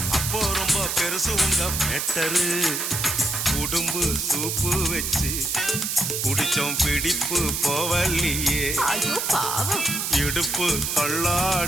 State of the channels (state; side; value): noise; right; hiss, 1 dB below the sound